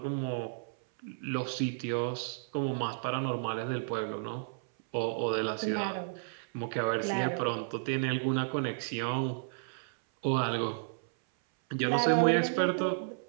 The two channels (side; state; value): left; silent; 56 dB below the other